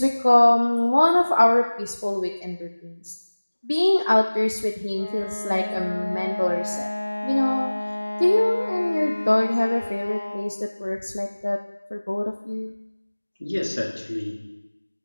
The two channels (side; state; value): both; inverted; correlation -1.00